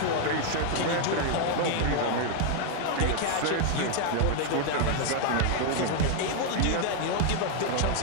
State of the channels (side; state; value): both; different; correlation 0.00